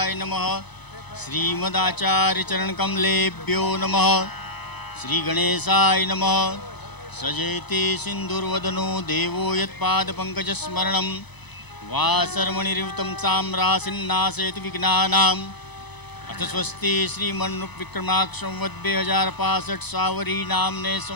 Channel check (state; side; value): late; right; 0.99 ms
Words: नमः श्रीमदाचार्य चरण कमलेभ्यो नमः श्री गणेशाय नमः सजेति सिंधुर्वदनो देवो यत्पादपङ्कजस्मरणं वासर्मणिरिवतं साम्रासिन्नाशयति विघ्नानाम् अथ स्वस्ति श्रीमन्नुविक्रमाक्षं वद् 2065 सावरी नामने